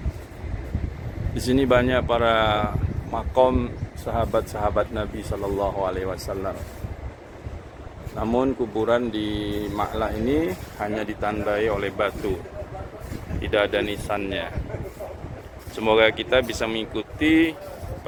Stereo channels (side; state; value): both; identical; correlation 1.00